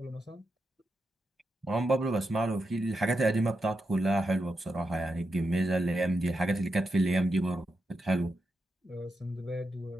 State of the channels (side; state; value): both; normal; correlation 0.86